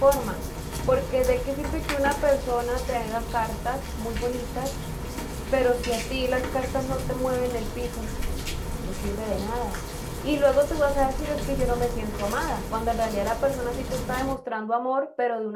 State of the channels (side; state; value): both; identical; correlation 1.00